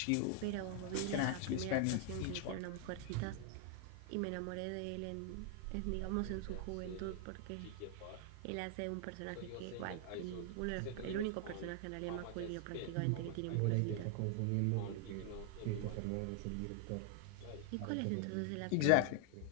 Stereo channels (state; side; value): different; both; correlation 0.00